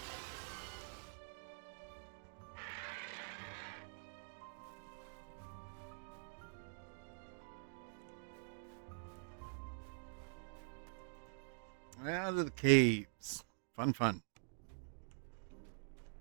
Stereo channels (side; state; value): left; silent; digital silence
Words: Out of the caves. Fun, fun.